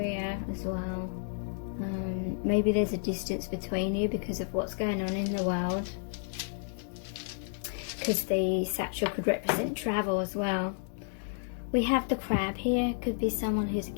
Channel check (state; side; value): silent; right; digital silence